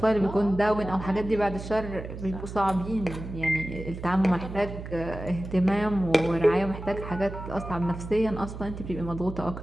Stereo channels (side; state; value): right; noise; hum, 10 dB below the sound